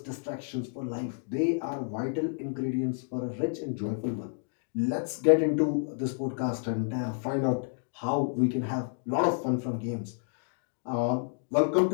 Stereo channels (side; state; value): right; silent; digital silence